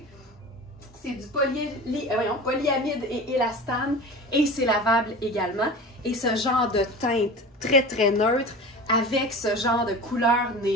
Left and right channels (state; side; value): normal; both; correlation 0.34